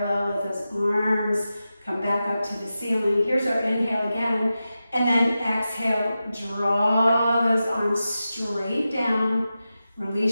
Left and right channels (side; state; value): both; inverted; correlation -0.92